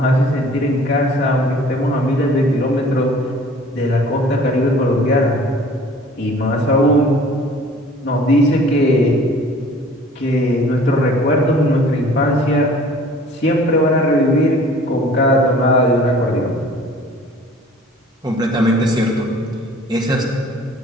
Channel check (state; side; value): normal; both; correlation 0.49